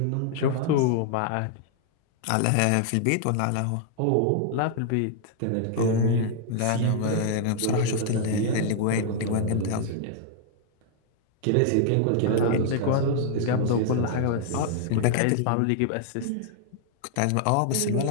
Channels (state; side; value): different; both; correlation -0.01